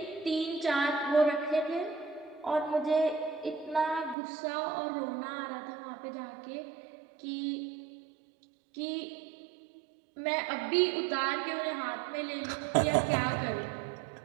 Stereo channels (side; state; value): left; drops out; at 4.2 s